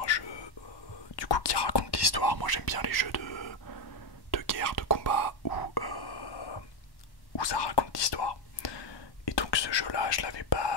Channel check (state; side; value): late; right; 1.1 ms